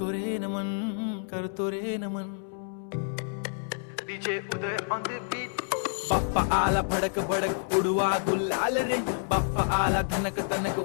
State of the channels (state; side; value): silent; right; 59 dB below the other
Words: रे नमन करतो रे नमन। DJ Uday on the beat. Bappa आला भडक भडक उडवा गुलाल रे, बाप्पा आला धनक तनक